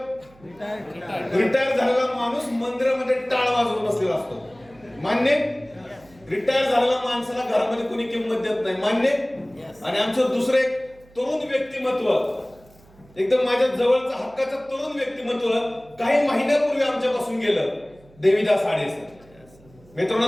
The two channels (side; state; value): right; noise; hum, 27 dB below the sound